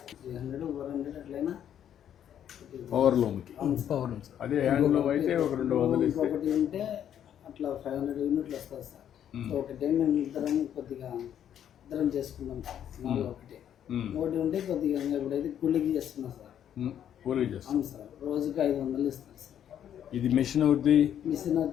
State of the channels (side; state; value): right; quieter; 9.9 dB